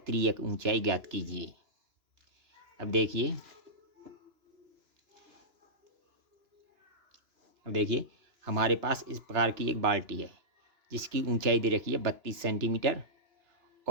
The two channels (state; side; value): late; left; 2.9 ms